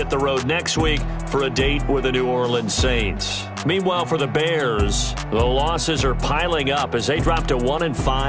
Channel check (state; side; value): identical; both; correlation 1.00